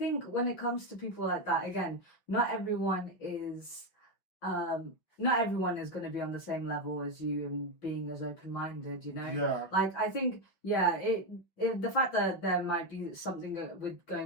when it comes to people like that, again, not everyone is going to be on the same level as you and being as open-minded, you know. Yeah. Like I think, yeah, it the fact that there might be something with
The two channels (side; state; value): right; late; 5.8 ms